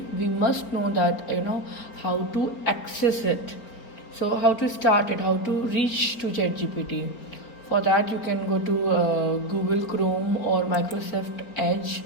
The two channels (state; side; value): late; right; 4.3 ms